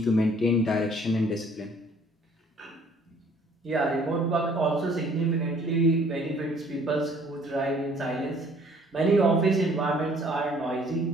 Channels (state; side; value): normal; both; correlation 0.58